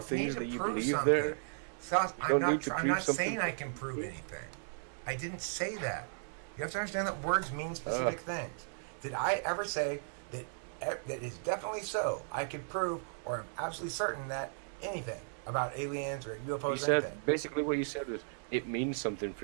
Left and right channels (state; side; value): silent; left; digital silence